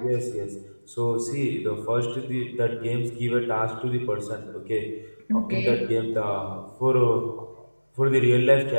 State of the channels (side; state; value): both; inverted; correlation -1.00